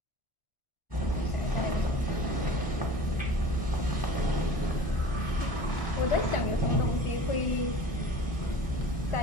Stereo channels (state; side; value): late; right; 1.0 ms